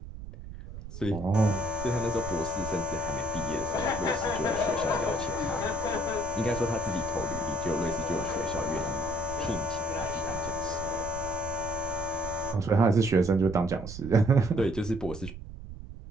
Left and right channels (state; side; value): noise; right; rumble, 11 dB below the sound